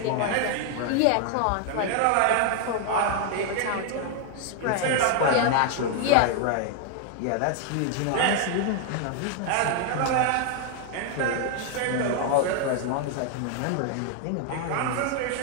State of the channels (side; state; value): both; different; correlation 0.00